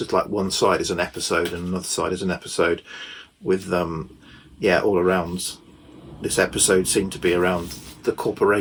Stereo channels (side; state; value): both; identical; correlation 1.00